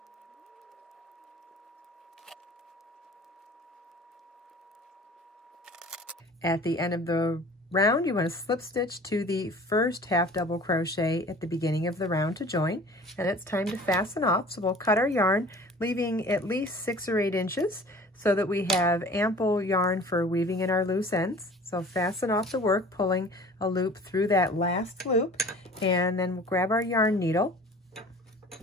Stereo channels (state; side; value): normal; both; correlation 0.45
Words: At the end of the round, you want to slip stitch to the first half double crochet at the beginning of the round to join, and it's time to fasten off. So we'll cut our yarn, leaving at least 6 or 8 inches so that we have ample yarn for weaving in our loose ends. So fasten off the work, pulling a loop through that last loop, and then we'll grab our yarn needle